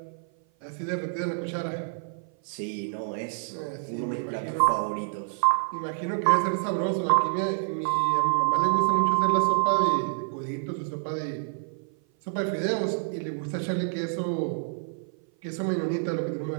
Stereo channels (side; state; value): left; silent; 56 dB below the other